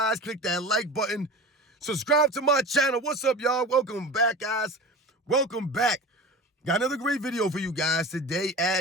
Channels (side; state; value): both; normal; correlation 0.34